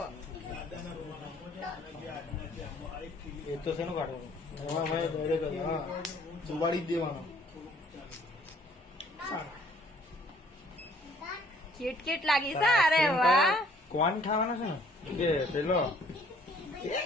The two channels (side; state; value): both; normal; correlation 0.59